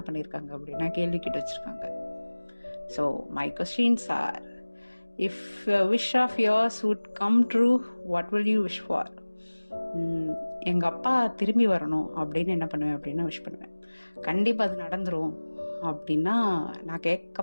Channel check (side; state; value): both; inverted; correlation -1.00